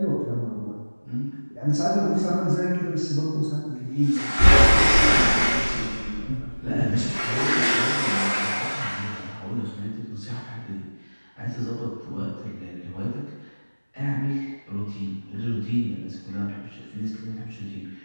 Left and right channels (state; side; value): inverted; both; correlation -1.00